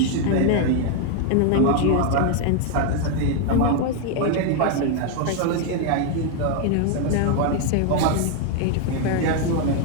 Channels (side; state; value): both; different; correlation 0.01